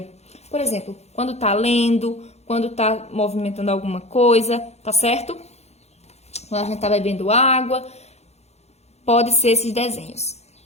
Por exemplo, quando tá lendo, quando tá movimentando alguma coisa, tá certo? Quando a gente tá bebendo água, pode ser esses desenhos.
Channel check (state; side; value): late; right; 0.31 ms